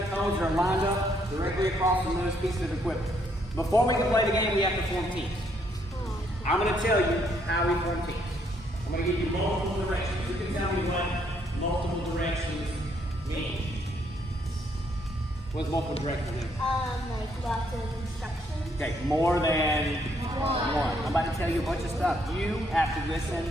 cones that are lined up directly across from those pieces of equipment. Before we can play the game, we have to form teams. I'm going to tell you how we form teams. I'm going to give you multiple directions. You can tell me what multiple directions mean. What does multiple directions mean? Like lots of instructions. Okay, more than one. I'm about to tell you a bunch of stuff. You have to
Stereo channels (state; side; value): normal; both; correlation 0.71